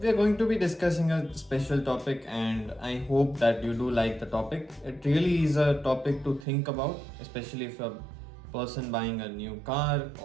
we are going to be discussing a special topic, and I hope that you do like the topic. It really is a topic to think about, especially if you're a person buying a new car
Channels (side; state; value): left; drops out; at 6.5 s